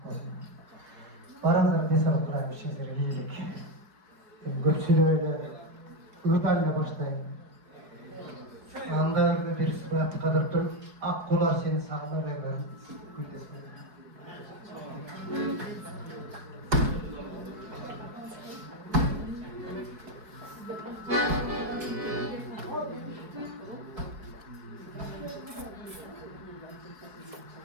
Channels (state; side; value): late; left; 4.7 ms